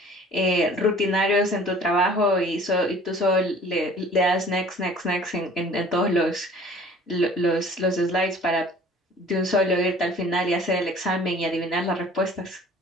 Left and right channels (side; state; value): both; normal; correlation 0.49